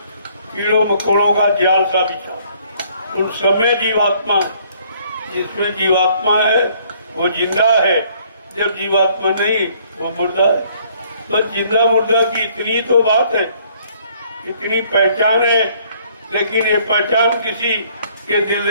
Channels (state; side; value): inverted; both; correlation -0.62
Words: कीड़ों मकोड़ों का जाल सा बिछा, उन सब में जीवात्मा। जिसमें जीवात्मा है वो जिंदा है, जब जीवात्मा नहीं वो मुर्दा है। तो जिंदा मुर्दा की इतनी तो बात है, इतनी पहचान है, लेकिन ये पहचान किसी के दिल